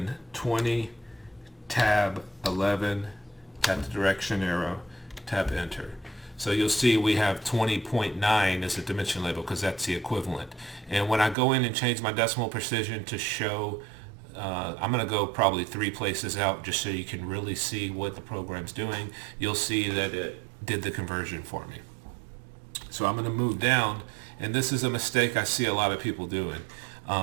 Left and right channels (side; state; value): left; drops out; at 11.4 s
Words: 20 tab 11, tap the direction arrow, tap enter. So you'll see we have 20.9 as a dimension label because that's the equivalent. And when I go in and change my decimal precision to show, I'm going to go probably 3 places out just so you can really see what the program's doing. You'll see that it did the conversion for me. So I'm going to move down, and this is a mistake I see a lot of people doing.